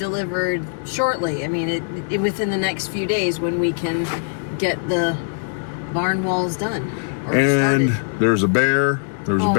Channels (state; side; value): silent; right; digital silence